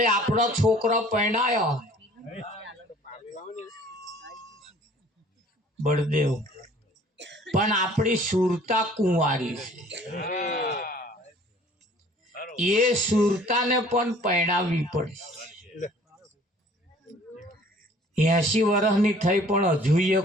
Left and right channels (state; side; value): normal; both; correlation 0.53